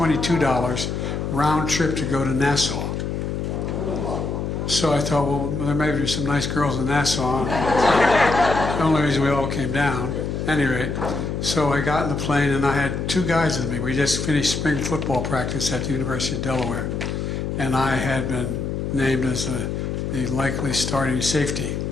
round trip to go to Nassau. So I thought, well, there may be some nice girls in Nassau. The only reason we all came down. At any rate, so I got in the plane, and I had 2 guys with me. We just finished spring football practice at the University of Delaware, and I had been named as the likely starting safety.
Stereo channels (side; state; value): left; noise; hum, 3 dB below the sound